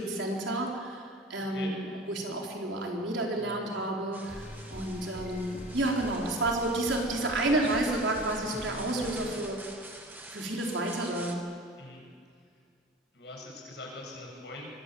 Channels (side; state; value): both; normal; correlation 0.38